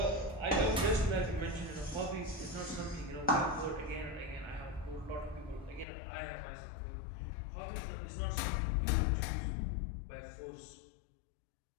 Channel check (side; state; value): right; drops out; at 5.9 s